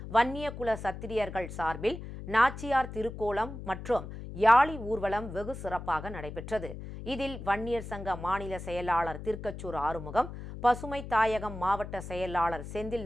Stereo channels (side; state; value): left; noise; hum, 10 dB below the sound